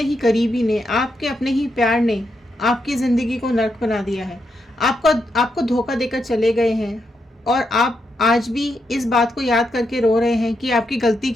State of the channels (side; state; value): both; normal; correlation 0.82